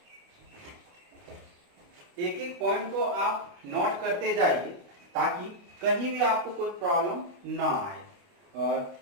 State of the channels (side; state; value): left; late; 28 ms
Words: एक एक पॉइंट को आप नोट करते जाइए ताकि कहीं भी आपको कोई प्रॉब्लम ना आए। और